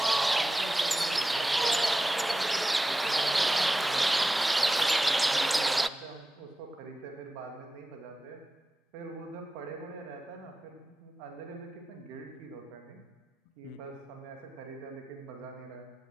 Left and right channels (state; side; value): normal; both; correlation 0.94